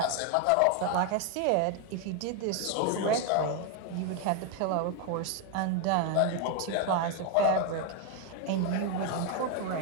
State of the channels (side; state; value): both; different; correlation 0.01